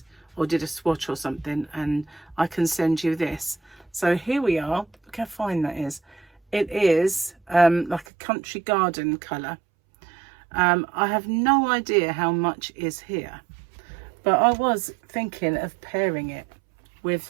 or did a swatch or something, and I can send you this. So here we are. Look how fine that is. It is like a country garden colour. I have no idea how much is here, but I was thinking of pairing it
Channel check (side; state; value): left; drops out; at 8.1 s